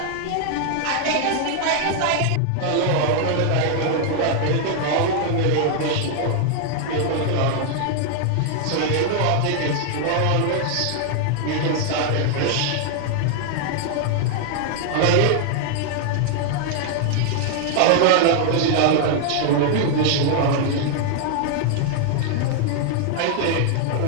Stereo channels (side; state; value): both; different; correlation 0.00